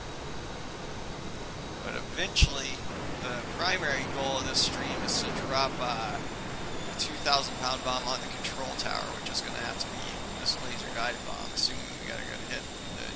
But eventually the primary goal of this stream is to drop a 2,000-pound bomb on the control tower, which is going to have to be this laser guided bomb, assuming we got a good hit with the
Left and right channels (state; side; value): identical; both; correlation 1.00